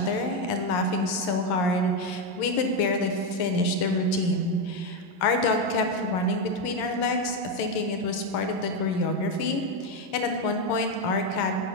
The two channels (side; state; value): right; late; 11 ms